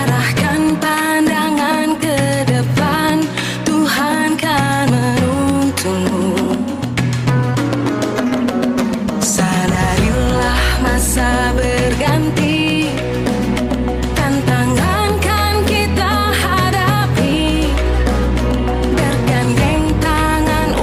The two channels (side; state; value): both; identical; correlation 1.00